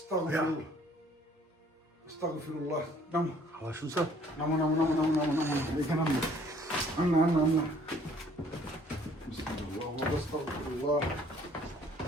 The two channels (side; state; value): both; normal; correlation 0.58